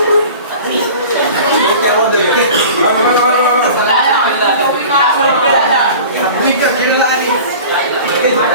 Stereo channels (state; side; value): inverted; both; correlation -0.40